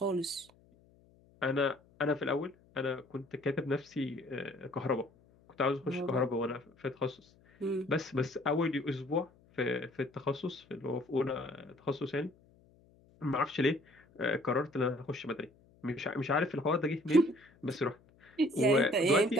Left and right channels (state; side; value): noise; left; hum, 29 dB below the sound